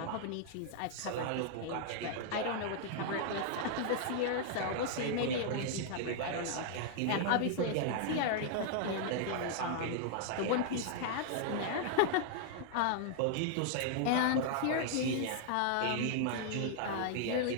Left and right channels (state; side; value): different; both; correlation -0.01